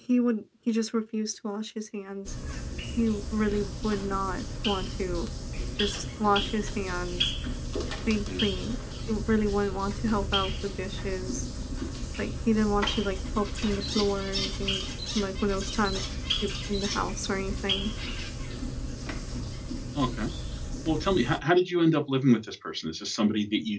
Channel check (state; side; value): identical; both; correlation 1.00